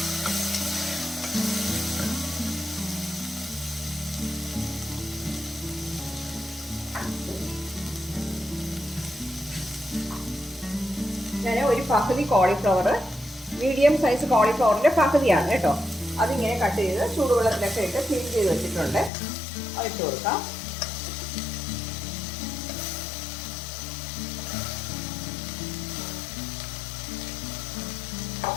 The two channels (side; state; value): right; drops out; at 19.1 s